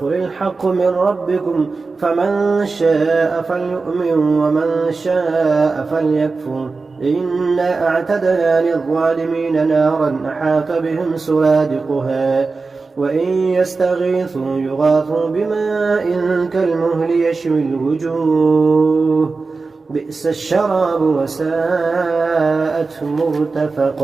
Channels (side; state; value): left; quieter; 4.1 dB